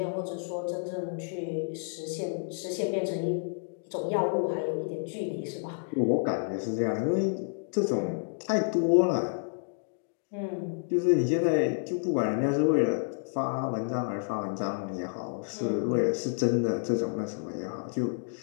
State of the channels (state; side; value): silent; right; digital silence